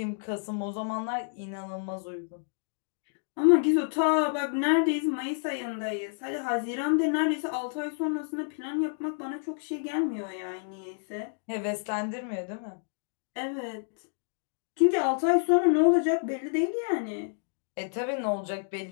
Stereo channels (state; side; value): silent; right; digital silence